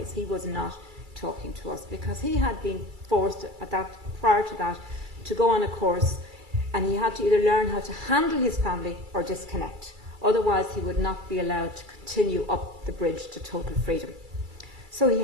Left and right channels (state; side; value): late; left; 2.3 ms